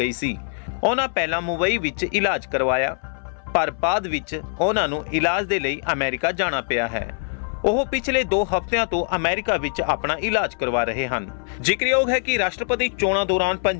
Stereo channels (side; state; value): right; silent; 62 dB below the other